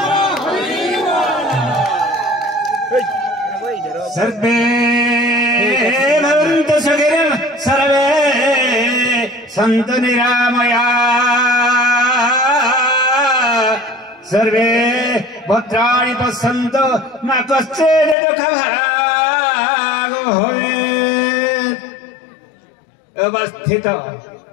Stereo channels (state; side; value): drops out; right; at 18.2 s